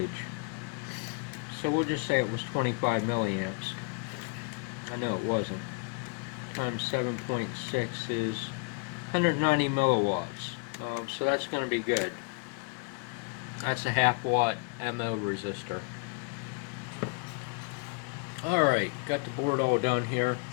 So we'll just say it was 25 milliamps. I know it wasn't. Times 7.6 is 190 milliwatts. So that's going to be good. That's a half watt MO resistor. Alright, got the board all done here.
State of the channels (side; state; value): right; quieter; 33.8 dB